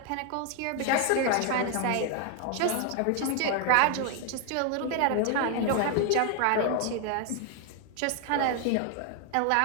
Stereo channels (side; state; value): both; different; correlation 0.00